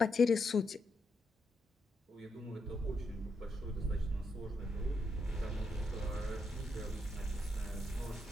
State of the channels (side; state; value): both; normal; correlation 0.81